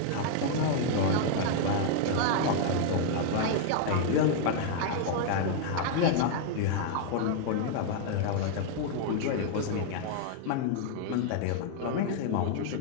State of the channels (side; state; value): both; different; correlation 0.00